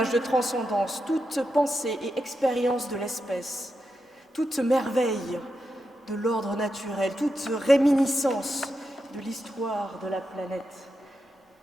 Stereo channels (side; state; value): both; normal; correlation 0.87